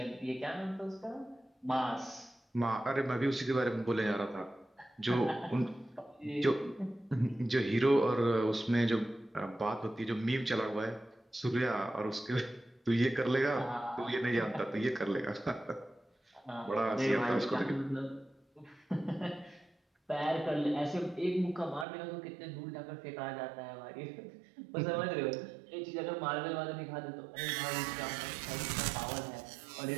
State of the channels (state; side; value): drops out; left; at 21.9 s